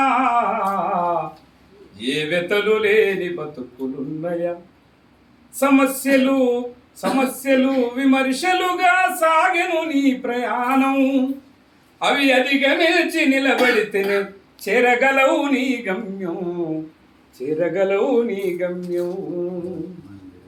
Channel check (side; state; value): both; identical; correlation 1.00